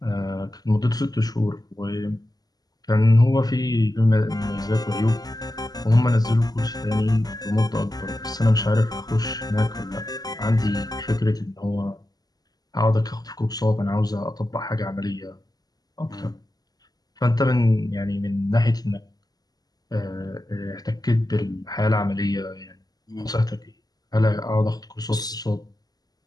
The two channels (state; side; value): late; right; 0.19 ms